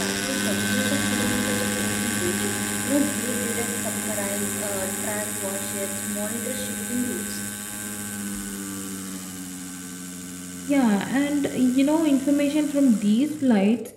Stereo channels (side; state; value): both; identical; correlation 1.00